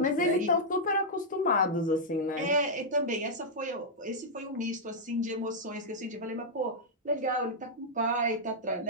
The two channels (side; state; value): both; normal; correlation -0.07